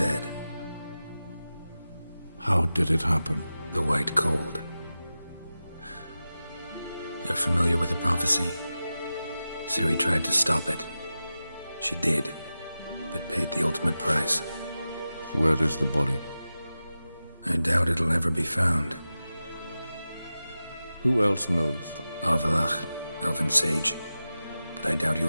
How did it happen? The White Cold. You're familiar with the prophecy? Ciri tried to stop it. She did, but paid the ultimate price. Where is the body? I doubt it'll ever be found. Who else knows? Avallac'h, Elven Sage. But I doubt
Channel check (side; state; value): both; inverted; correlation -0.94